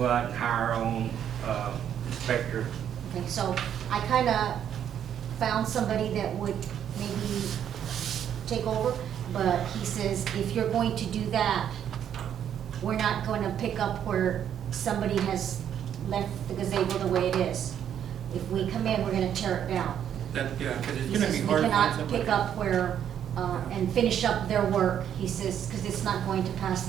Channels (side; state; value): left; quieter; 9.5 dB